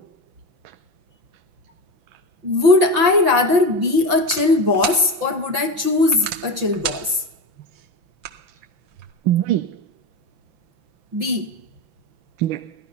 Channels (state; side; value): late; left; 6.0 ms